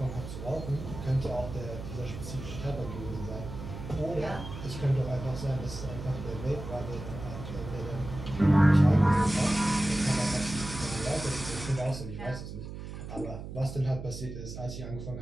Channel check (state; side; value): noise; right; hum, 9 dB below the sound